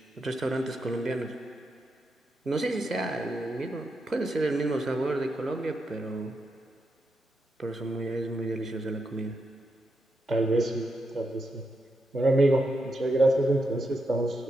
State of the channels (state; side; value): normal; both; correlation 0.84